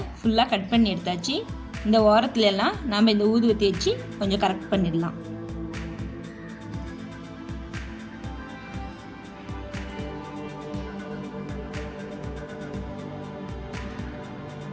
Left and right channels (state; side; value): identical; both; correlation 1.00